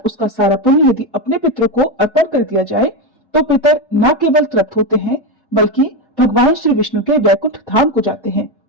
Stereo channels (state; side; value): normal; both; correlation 0.12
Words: उसका सारा पुण्य यदि अपने पितरों को अर्पण कर दिया जाए तो पितर न केवल तृप्त होते हैं, बल्कि भगवान श्री विष्णु के वैकुंठ धाम को जाते हैं।